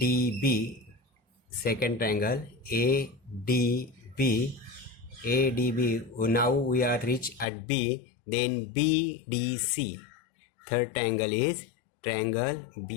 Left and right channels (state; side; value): drops out; right; at 7.5 s